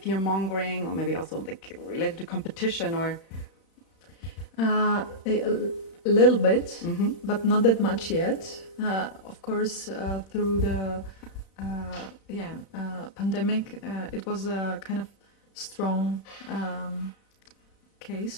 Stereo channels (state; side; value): late; right; 35 ms